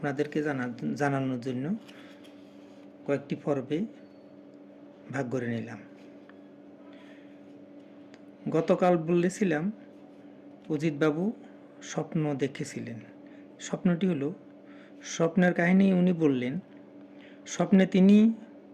জানানোর জন্য কয়েকটি পর্বে ভাগ করে নিলাম। গতকাল বলেছিলাম অজিতবাবু স্বপ্ন দেখেছিলেন। স্বপ্নটি হলো, স্বপ্নের কাহিনী উনি বললেন। স্বপ্নে তিনি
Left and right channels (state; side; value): identical; both; correlation 1.00